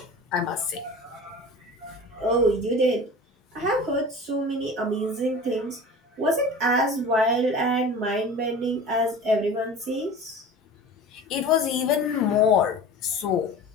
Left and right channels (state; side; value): normal; both; correlation 0.37